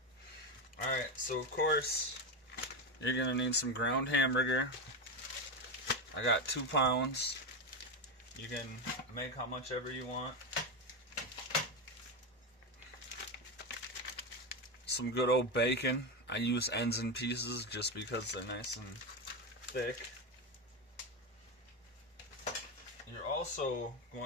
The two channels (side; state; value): both; normal; correlation 0.13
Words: Alright, so of course, you're going to need some ground hamburger. I got 2 pounds. You can make how much ever you want. Some good old bacon. I use ends and pieces just because they're nice and thick. You're also